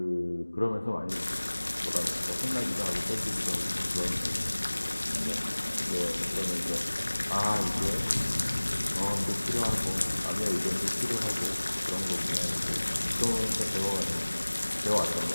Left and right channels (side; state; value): both; inverted; correlation -1.00